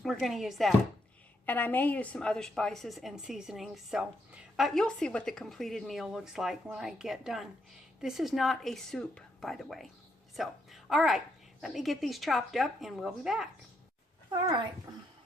we're going to use that, and I may use some other spices and seasonings, so you'll see what the completed meal looks like when I get done. This is not a soup, by the way. So all right, let me get these chopped up and we'll be back. All right,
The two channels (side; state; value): both; normal; correlation 0.78